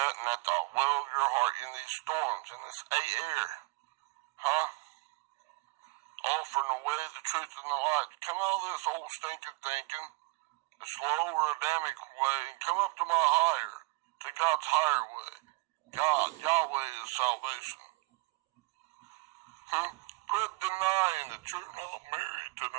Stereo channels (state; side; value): quieter; left; 24.6 dB